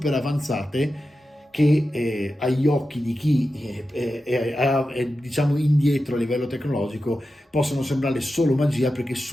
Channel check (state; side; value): normal; both; correlation 0.91